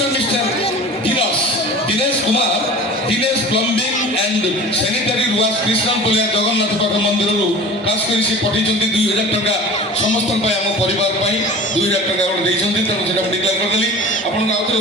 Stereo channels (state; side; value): normal; both; correlation 0.38